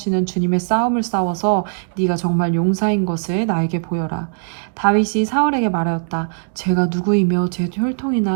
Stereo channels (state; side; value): silent; left; digital silence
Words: 주님의 싸움을 싸워서 네가 정말 용사인 것을 나에게 보여라. 다윗이 사울에게 말하였다. 제가 누구이며 제